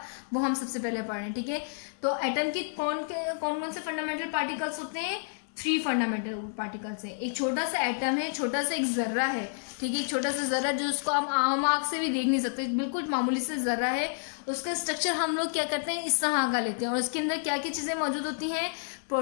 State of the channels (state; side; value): silent; right; digital silence